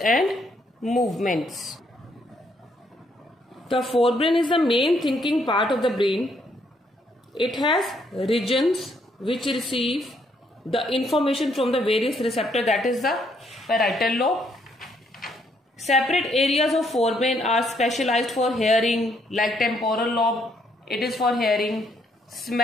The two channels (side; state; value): both; normal; correlation 0.71